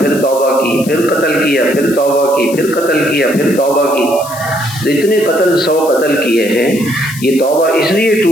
توبہ کی, پھر قتل کیا, پھر توبہ کی, پھر قتل کیا, پھر توبہ کی. تو اتنے 100 قتل کیے ہیں. یہ توبہ اس لیے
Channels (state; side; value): noise; left; hiss, 14 dB below the sound